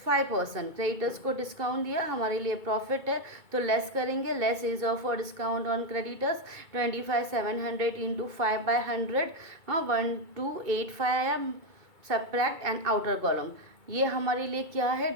5%. creditors को discount दिया, हमारे लिए profit है, तो less करेंगे, less is of for discount on creditors 25,700 into 5/100, 1285 आया, subtract and outer column. ये हमारे लिए क्या है,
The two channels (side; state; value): left; late; 2.3 ms